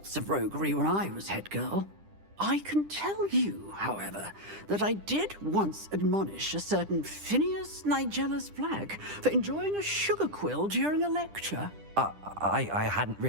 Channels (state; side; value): late; left; 10 ms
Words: of roguery when I was head girl. I can tell you, however, that I did once admonish a certain Phineas Nigellus Black for enjoying a sugar quill during a lecture. I hadn't